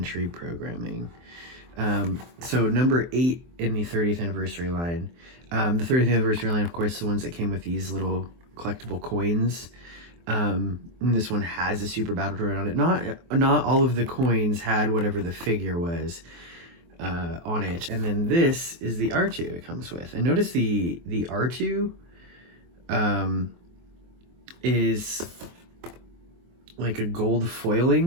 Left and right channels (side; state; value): left; late; 23 ms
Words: programming. So number 8 in the 30th anniversary line. The 30th anniversary line, of course, the ones that came with these little collectible coins. And this one has a super battle droid on it. Not all of the coins had whatever the figure was on it. And then this is the R2 it comes with. And notice the R2 is like a gold